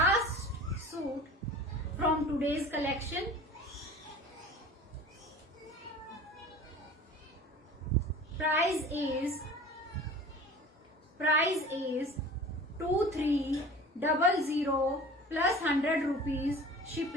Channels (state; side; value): normal; both; correlation 0.40